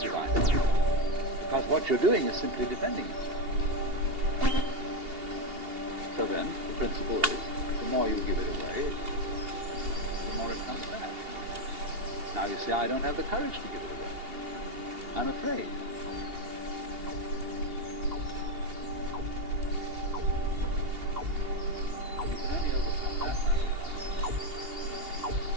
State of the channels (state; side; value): late; left; 2.8 ms